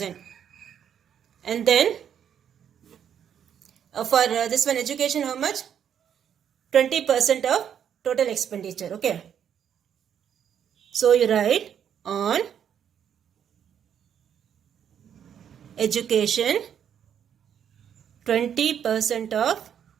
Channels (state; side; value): quieter; left; 8.8 dB